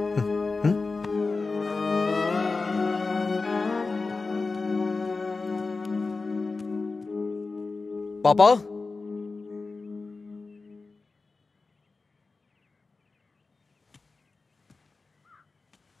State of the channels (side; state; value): right; quieter; 3.9 dB